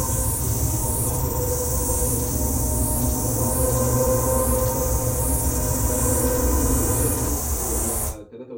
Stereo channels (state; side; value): identical; both; correlation 1.00